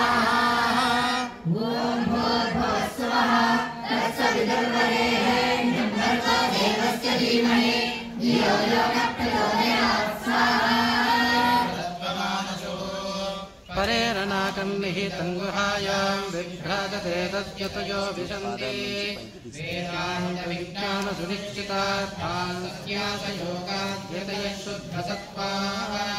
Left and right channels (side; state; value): both; identical; correlation 1.00